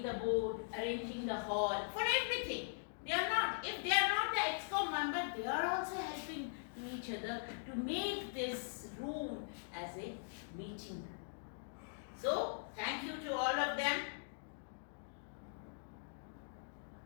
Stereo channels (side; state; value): right; silent; digital silence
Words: the board, arranging the hall, for everything. They are not, if they are not the ExCom member, they are also helping to each other to make this room as a meeting room. So, thank you to all of them.